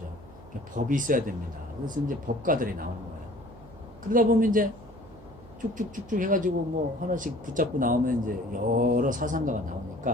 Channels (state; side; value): noise; right; hum, 21 dB below the sound